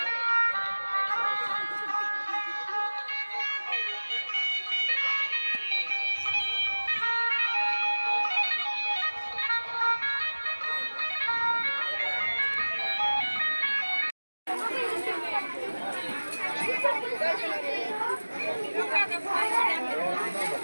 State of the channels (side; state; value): both; inverted; correlation -1.00